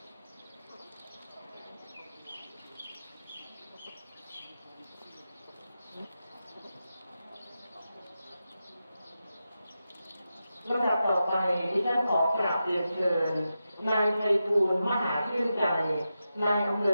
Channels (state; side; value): inverted; both; correlation -0.90